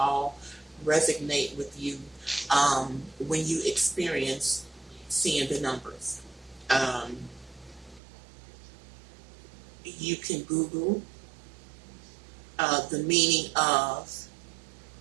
resonate with you when you experience seeing the numbers. You can Google the meaning of,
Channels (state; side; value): drops out; left; at 8.0 s